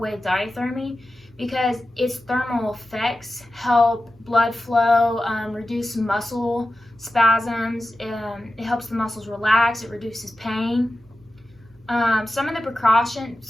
diathermy, because its thermal effects help blood flow, reduce muscle spasms, it helps the muscles relax, it reduces pain. Some of the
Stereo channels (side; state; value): both; normal; correlation 0.93